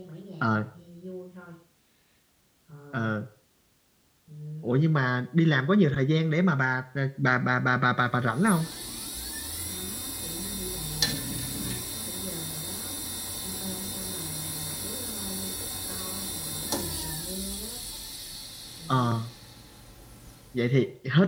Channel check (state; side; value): identical; both; correlation 1.00